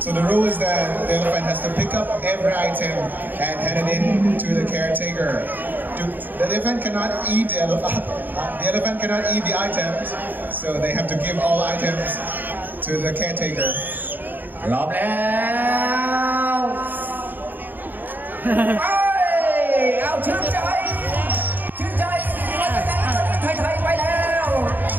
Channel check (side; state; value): left; late; 0.088 ms